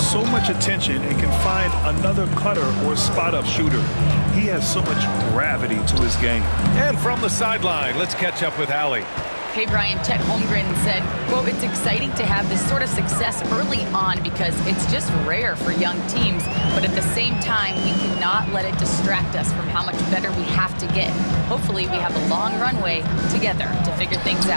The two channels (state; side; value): inverted; both; correlation -1.00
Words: much attention and can find another cutter or spot-up shooter. He has so much gravity to his game. And from the sideline, let's catch up with Allie. Hey, Brian, Chet Holmgren said, quote, "It's exciting to have this sort of success early on because it's just rare for young teams. But at the same time, we cannot let it distract us from how much better we have to get. Hopefully, we have a long runway together to figure things